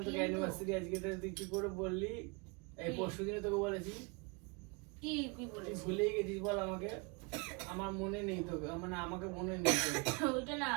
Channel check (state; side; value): quieter; left; 30.1 dB